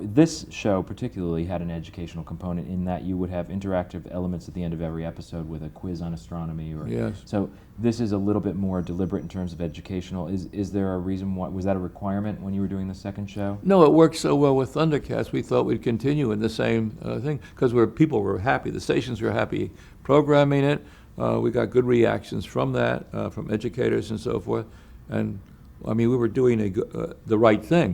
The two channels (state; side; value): identical; both; correlation 1.00